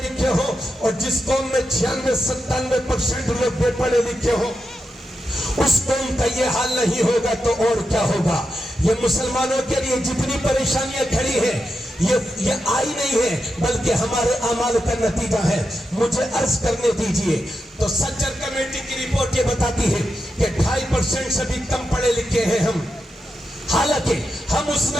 لکھے ہو اور جس قوم میں 96-97% لوگ بے پڑھے لکھے ہو، اس قوم کا یہ حال نہیں ہوگا تو اور کیا ہوگا؟ یہ مسلمانوں کے لیے جتنی پریشانیاں کھڑی ہیں یہ آئی نہیں ہے بلکہ ہمارے اعمال کا نتیجہ ہے. مجھے عرض کرنے دیجئے تو سچر کمیٹی کی رپورٹ یہ بتاتی ہے کہ 2.5% سے بھی کم پڑھے لکھے ہیں ہم، حالانکہ ہم اس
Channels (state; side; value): normal; both; correlation 0.88